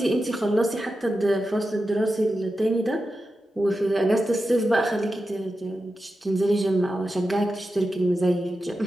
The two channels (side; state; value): both; normal; correlation 0.91